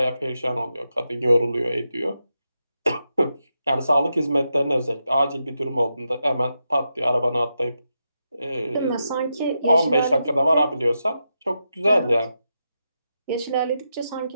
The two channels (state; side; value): inverted; both; correlation -0.86